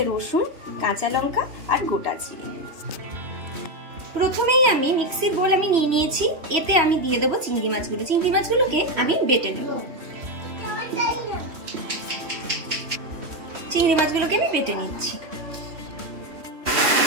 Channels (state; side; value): late; left; 3.1 ms